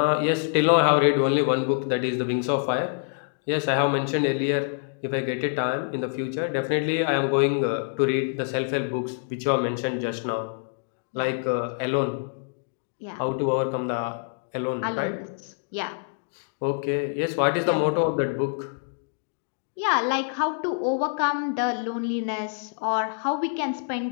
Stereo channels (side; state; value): right; silent; digital silence